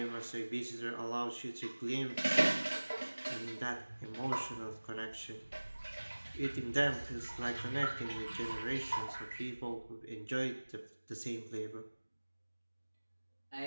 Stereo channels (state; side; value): inverted; both; correlation -1.00